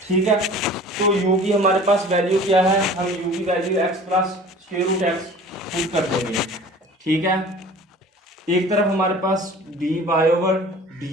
ठीक है। तो u की हमारे पास वैल्यू क्या है, हम u की value x + square root x put कर देंगे, ठीक है। एक तरफ हमारे पास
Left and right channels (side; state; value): both; normal; correlation 0.44